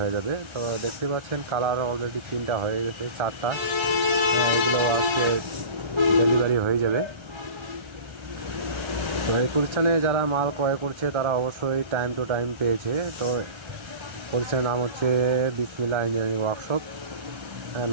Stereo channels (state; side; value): late; left; 1.3 ms